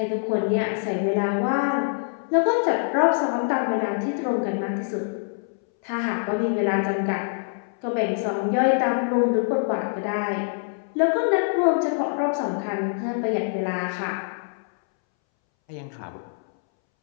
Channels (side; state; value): right; silent; 62 dB below the other